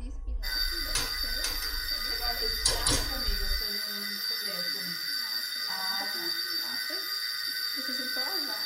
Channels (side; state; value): both; identical; correlation 1.00